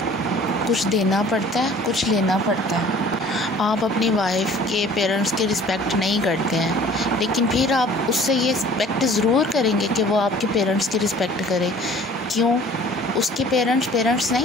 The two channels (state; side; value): normal; both; correlation 0.50